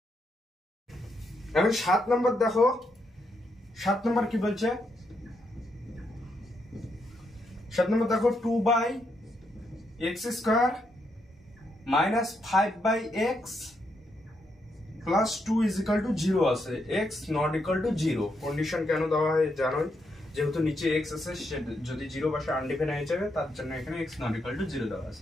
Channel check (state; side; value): normal; both; correlation 0.79